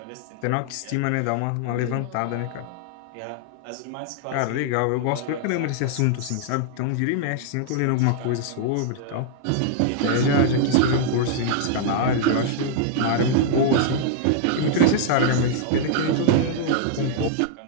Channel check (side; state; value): both; different; correlation -0.01